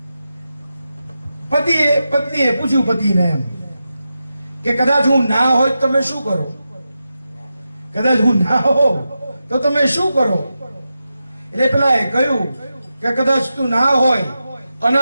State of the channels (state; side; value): inverted; both; correlation -0.90